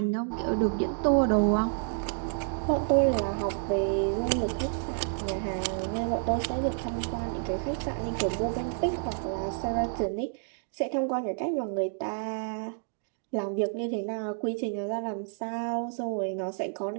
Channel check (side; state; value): left; silent; digital silence